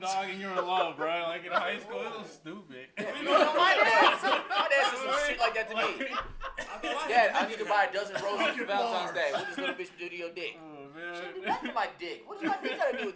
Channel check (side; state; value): both; identical; correlation 1.00